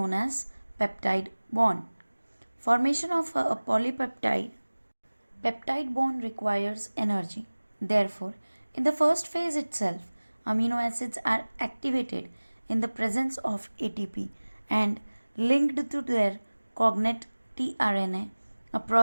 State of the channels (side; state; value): both; inverted; correlation -1.00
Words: as peptide bond. Formation of a polypeptide peptide bond requires energy. Therefore, in the first phase itself, amino acids are activated in the presence of ATP and linked to their cognate tRNA, a